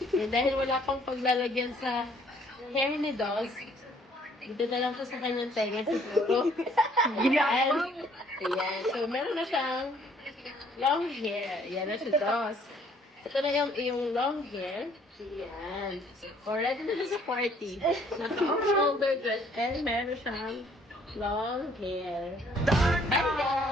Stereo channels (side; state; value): both; normal; correlation 0.62